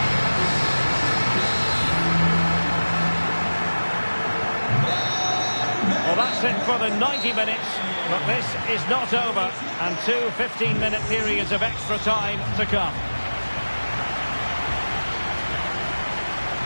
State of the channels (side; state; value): both; inverted; correlation -1.00